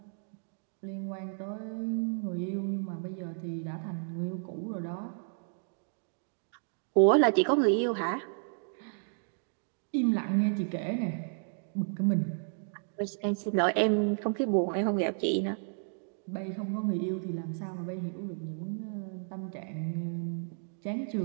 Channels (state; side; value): silent; left; digital silence